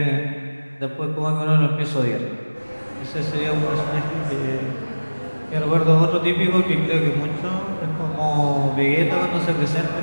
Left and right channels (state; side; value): inverted; both; correlation -1.00